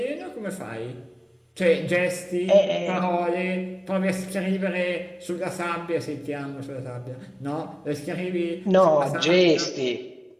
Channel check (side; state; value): both; identical; correlation 1.00